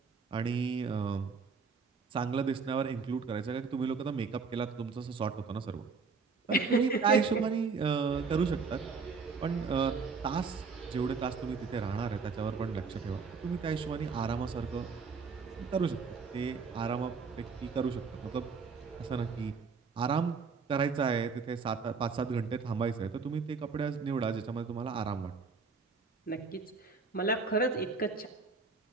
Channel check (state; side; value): quieter; left; 4.9 dB